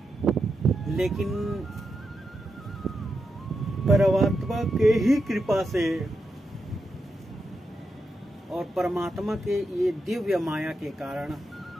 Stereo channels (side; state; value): both; normal; correlation 0.86